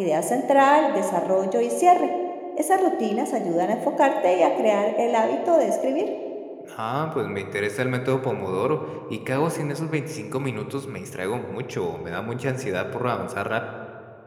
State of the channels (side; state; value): both; identical; correlation 1.00